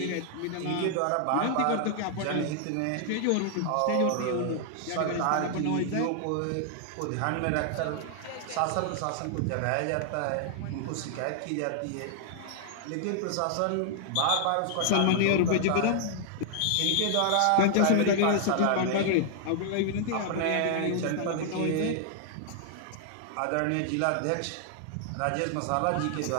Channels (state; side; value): different; both; correlation -0.01